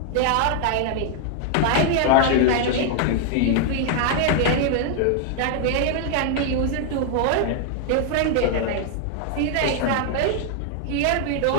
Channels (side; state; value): both; different; correlation 0.00